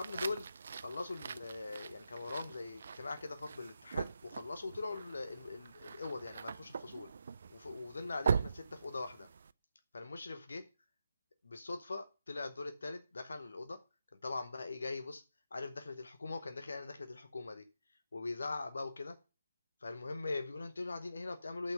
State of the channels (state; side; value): inverted; both; correlation -0.86